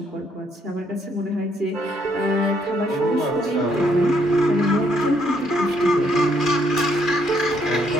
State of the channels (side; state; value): both; normal; correlation 0.71